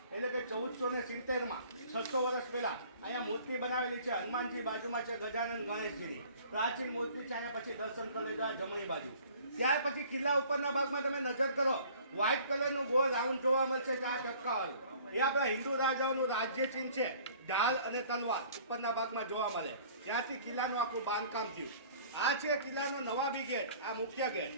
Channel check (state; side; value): inverted; both; correlation -0.51